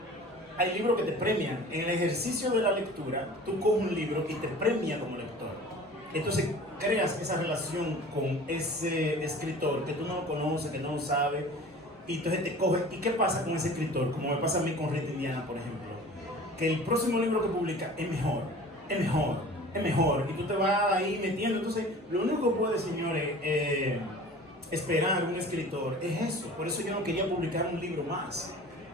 Hay libros que te premian. En el ejercicio de la lectura, tú coges un libro y te premia como lector. Entonces creas esa relación con ese escritor que tú no lo conoces, que no lo sabes. Y entonces te coge. ¿Y qué pasa con ese escritor? Como me pasa a mí con Rita Indiana, por ejemplo. Que el próximo libro que publica es mejor. Y tú te vas ahí metiendo. Entonces, lo único que puede, señores, esperar un escritor es eso. Por eso yo no quería publicar un libro más.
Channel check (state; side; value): normal; both; correlation 0.42